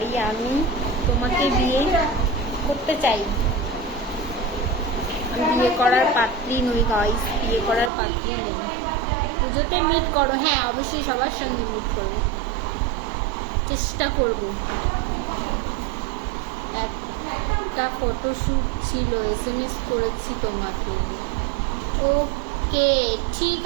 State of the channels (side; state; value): left; drops out; at 7.9 s